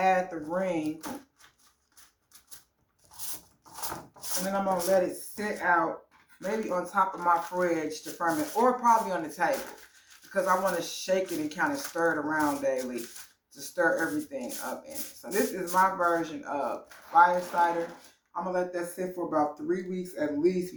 the ring, and then I'm going to let it sit out, maybe on top of my fridge to ferment, or probably on the table, because I want to shake it and kind of stir it around daily to stir everything up in it. So this is my version of fire cider. I'm going to let that sit for about 3 weeks at least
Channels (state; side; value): identical; both; correlation 1.00